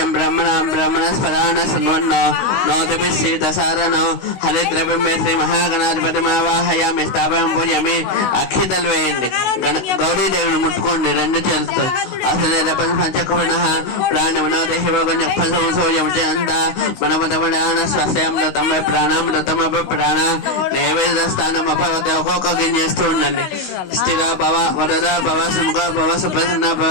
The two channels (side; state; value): right; late; 16 ms